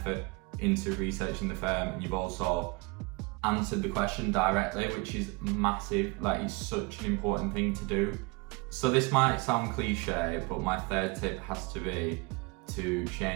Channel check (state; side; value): quieter; left; 27.2 dB